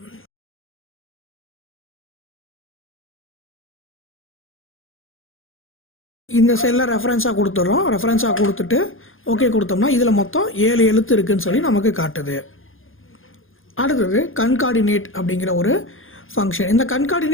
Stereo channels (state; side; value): late; right; 0.59 ms